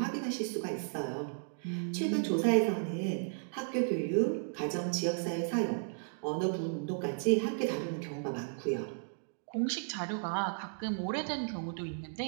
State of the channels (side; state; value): left; silent; digital silence